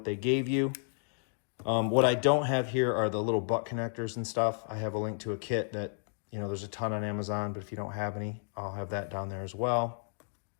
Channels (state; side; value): silent; right; digital silence